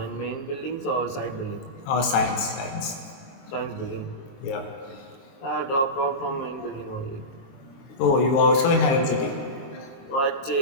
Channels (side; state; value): right; late; 23 ms